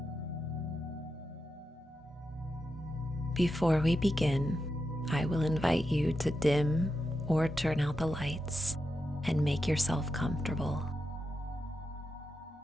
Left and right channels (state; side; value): normal; both; correlation 0.87